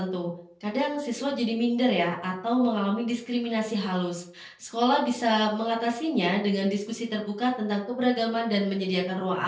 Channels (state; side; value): identical; both; correlation 1.00